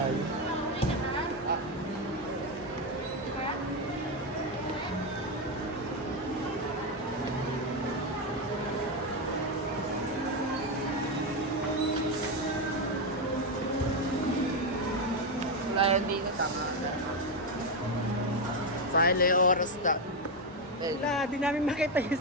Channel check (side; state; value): both; normal; correlation 0.08